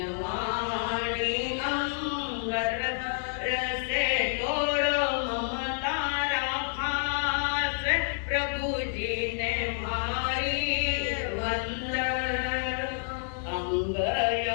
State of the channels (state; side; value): silent; right; digital silence